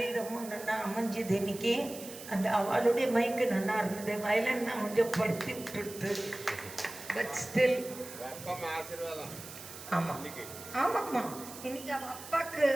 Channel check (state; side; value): noise; right; hiss, 13 dB below the sound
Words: நல்லா அமைஞ்சுது. இன்னைக்கு அந்த அவளுடைய மைக்கு நல்லா இருந்தது. வயலின் நான் கொஞ்சம் படுத்தி விட்டுடுத்து. பட் ஸ்டில் ஆமாம் ஆமாம்மா. இன்னைக்கு அவள் அப்பாவுக்கு